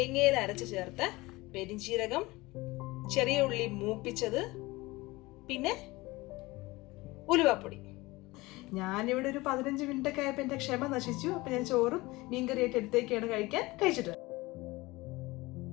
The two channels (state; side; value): quieter; right; 21.3 dB